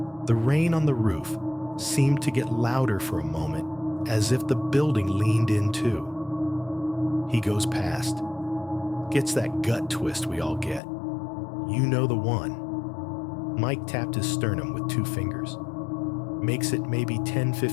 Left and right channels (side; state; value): right; drops out; at 10.8 s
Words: The rain on the roof seemed to get louder for a moment, as if the building leaned in too. He goes past. Gets that gut twist we all get. You know the one. Mike tapped his sternum with 2 fingers. Makes it maybe